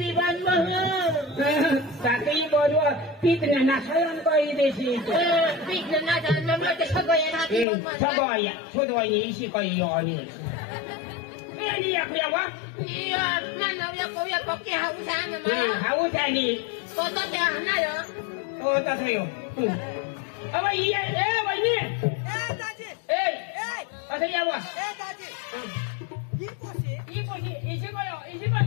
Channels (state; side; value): drops out; right; at 7.7 s